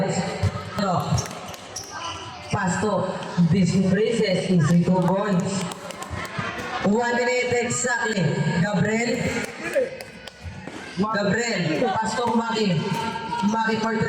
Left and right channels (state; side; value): identical; both; correlation 1.00